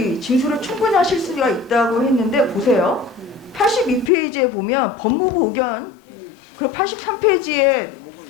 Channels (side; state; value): right; drops out; at 4.1 s